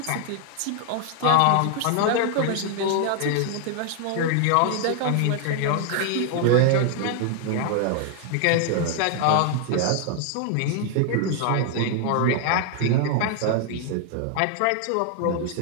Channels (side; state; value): both; different; correlation 0.00